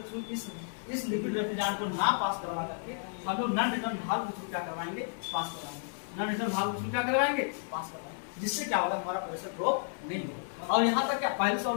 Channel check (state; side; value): silent; right; digital silence